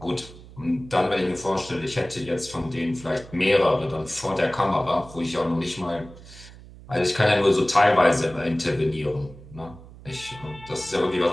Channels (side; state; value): right; noise; hum, 19 dB below the sound